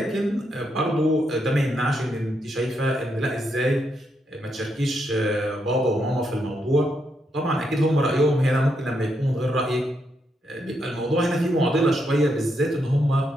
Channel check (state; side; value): normal; both; correlation 0.80